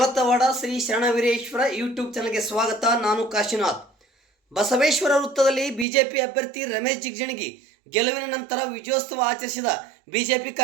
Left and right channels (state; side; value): drops out; left; at 5.9 s